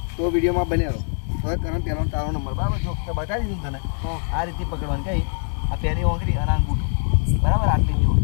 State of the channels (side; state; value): right; silent; 64 dB below the other